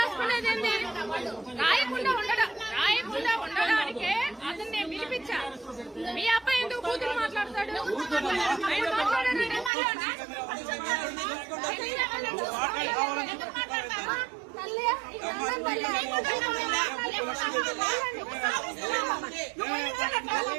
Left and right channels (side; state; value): left; drops out; at 9.7 s